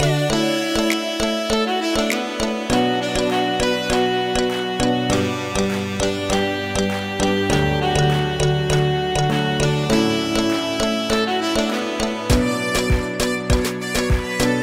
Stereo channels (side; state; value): both; identical; correlation 1.00